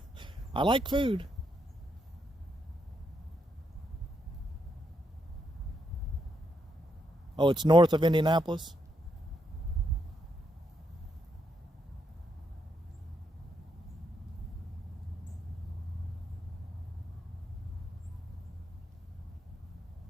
I like food. Oh, it's north of Indianapolis?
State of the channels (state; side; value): normal; both; correlation 0.79